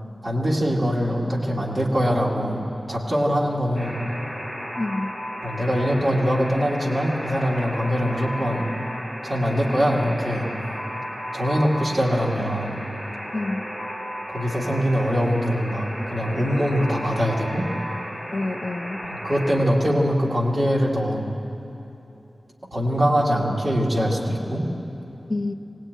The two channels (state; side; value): normal; both; correlation 0.94